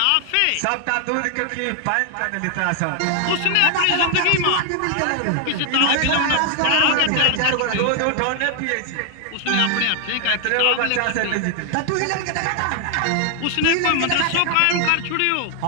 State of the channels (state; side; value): different; both; correlation 0.00